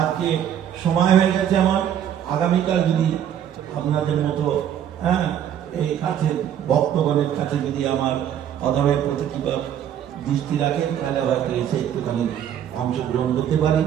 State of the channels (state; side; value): quieter; left; 9.8 dB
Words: সময় হয়ে গেছে আমার। আগামীকাল যদি আপনাদের মতো এই কাছে ভক্তগণের কাছে যদি আমার অধমের প্রতি কিংবা দৃষ্টি রাখেন, তাহলে হয়তো এসে একটুখানি অংশগ্রহণ করতে পারি।